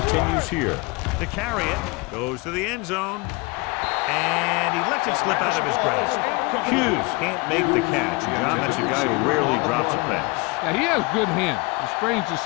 continues here. To carry it, goes to the end zone, and he lets it slip out of his grasp. Hughes can't make the catch. John, that's a guy who rarely drops a pass. Yeah, he has good hands. It's strange to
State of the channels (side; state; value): right; quieter; 26.1 dB